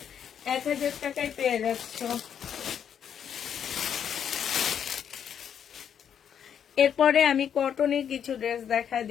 1000 টাকায় পেয়ে যাচ্ছ। এরপরে আমি কটনের কিছু ড্রেস দেখা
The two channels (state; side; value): quieter; right; 8.5 dB